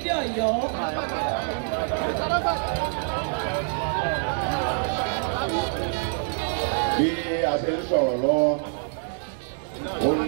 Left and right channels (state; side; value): silent; left; 61 dB below the other